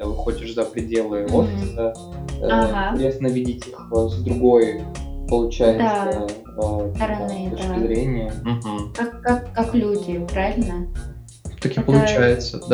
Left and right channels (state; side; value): identical; both; correlation 1.00